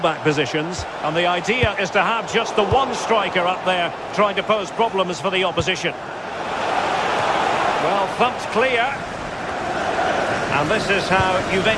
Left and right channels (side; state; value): both; identical; correlation 1.00